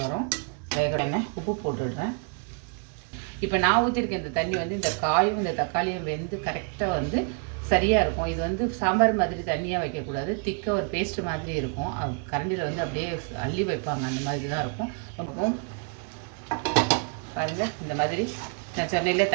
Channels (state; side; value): quieter; left; 38.9 dB